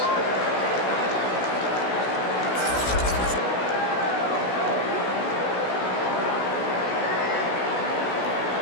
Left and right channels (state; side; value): late; right; 16 ms